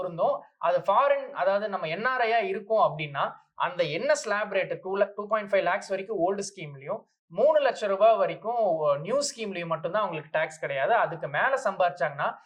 அது ஃபாரின், அதாவது நம்ம என்ஆர்ஐயா இருக்கும் அப்படின்னா அந்த என்ன ஸ்லாப் ரேட் 2.5 lakhs வரைக்கும் ஓல்டு ஸ்கீம்லயும் 3 லட்சம் ரூபாய் வரைக்கும் நியூ ஸ்கீம்லயும் மட்டும்தான் அவங்களுக்கு டாக்ஸ் கிடையாது. அதுக்கு மேல சம்பாரிச்சாங்கன்னா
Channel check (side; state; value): both; identical; correlation 1.00